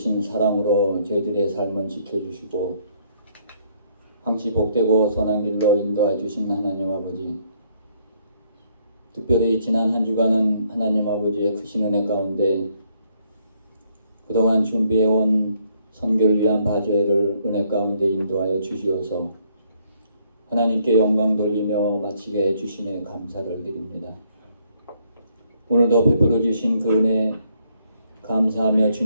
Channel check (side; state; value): both; inverted; correlation -0.70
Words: 사랑으로 저희들의 삶을 지켜주시고 항시 복되고 선한 길로 인도해 주신 하나님 아버지, 특별히 지난 한 주간은 하나님 아버지의 크신 은혜 가운데 그동안 준비해온 선교를 위한 바제를 은혜 가운데 인도하여 주시어서 하나님께 영광 돌리며 마치게 해주심에 감사를 드립니다. 오늘도 베풀어 주신 그 은혜 감사하며